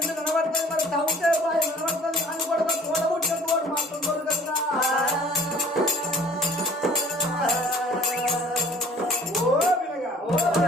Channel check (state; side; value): normal; both; correlation 0.51